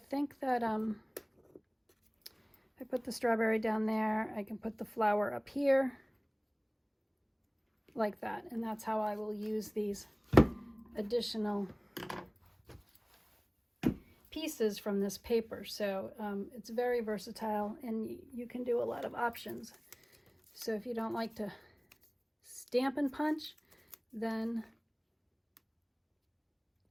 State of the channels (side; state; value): both; identical; correlation 1.00